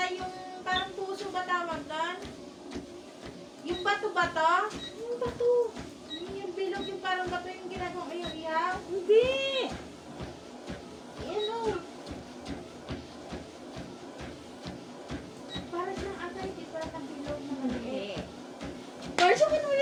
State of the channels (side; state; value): both; identical; correlation 1.00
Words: yung parang puso ba tawag doon? Yung bato-bato? Yung bato. Yung bilog yung parang bato yung ginagawa mo yung ihaw? Hindi. Ano? Parang siyang ata hindi pa na bilog na maliit. Parso ko nung